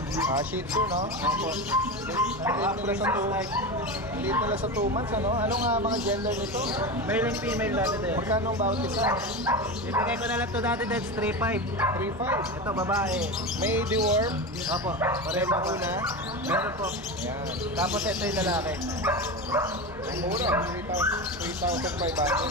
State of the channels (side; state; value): both; normal; correlation 0.22